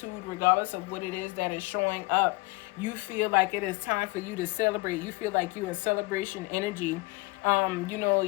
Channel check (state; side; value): quieter; right; 23.8 dB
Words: regardless of what it is that is showing up. You feel like it is time for you to celebrate. You feel like you're in celebration energy.